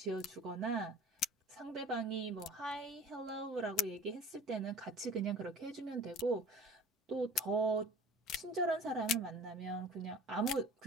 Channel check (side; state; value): both; normal; correlation 0.42